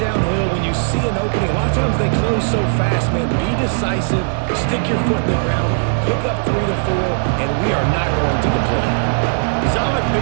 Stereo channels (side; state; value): left; silent; 63 dB below the other